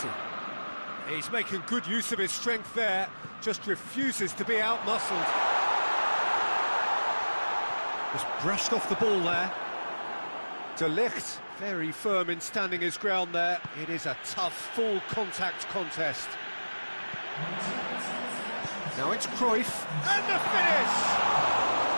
He's making good use of his strength there, just refuses to be outmuscled. Just brushed off the ball there. De Ligt, very firm in standing his ground there. It is a tough, full contact contest. Now it's Cruyff, and the finish!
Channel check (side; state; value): both; inverted; correlation -1.00